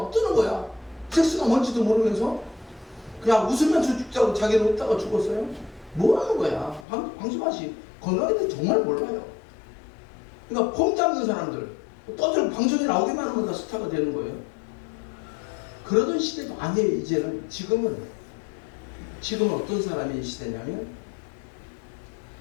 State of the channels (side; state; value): right; drops out; at 6.9 s